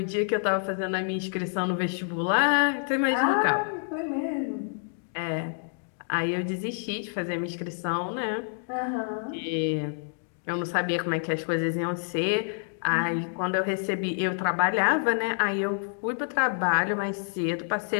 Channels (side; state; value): right; silent; digital silence